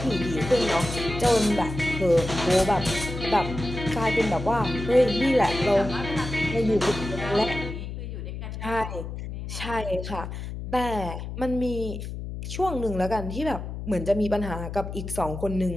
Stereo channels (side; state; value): left; noise; hum, 7 dB below the sound